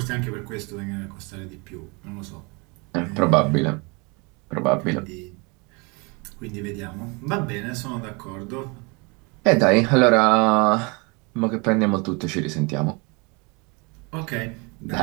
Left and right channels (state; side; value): quieter; left; 29.8 dB